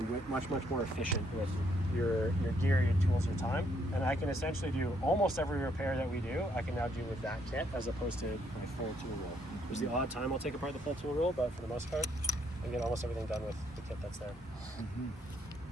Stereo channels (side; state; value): both; normal; correlation 0.71